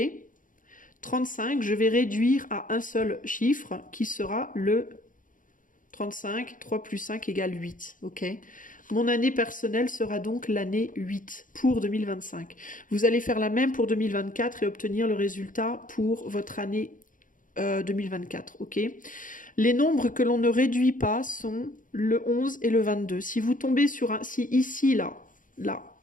? 35, je vais réduire à un seul chiffre qui sera le 35, 3 plus 5 égale 8, ok ? Mon année personnelle sera donc l'année 8 pour 2025. Vous allez faire la même pour 2024 et obtenir le résultat pour votre année 2024, ok ? Les nombres que l'on ne réduit pas sont le 11 et le 22. Si vous tombez sur un... Si ici,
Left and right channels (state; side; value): late; right; 0.39 ms